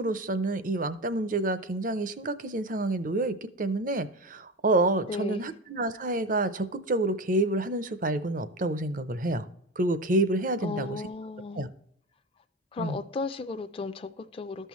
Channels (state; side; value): normal; both; correlation 0.25